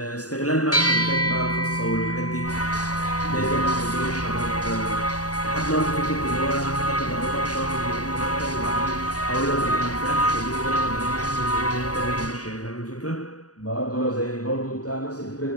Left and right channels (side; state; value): right; late; 0.68 ms